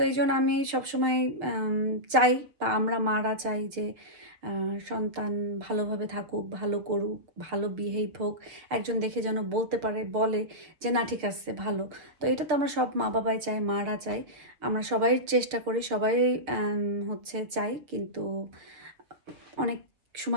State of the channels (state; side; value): late; left; 6.6 ms